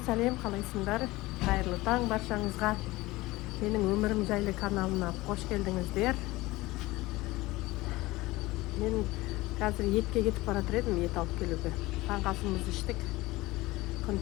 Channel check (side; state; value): right; quieter; 19.8 dB